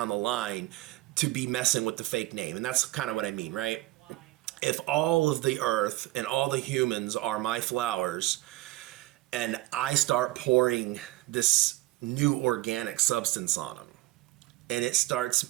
the line to be messing with the fake name. And that's kind of what I mean, right? If all of the earth and all the humans are my flowers, and I start pouring this new organic substance on them, and it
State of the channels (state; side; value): quieter; left; 18.5 dB